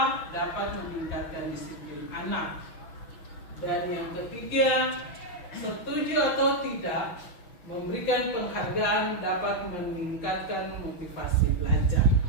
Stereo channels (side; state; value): right; late; 6.2 ms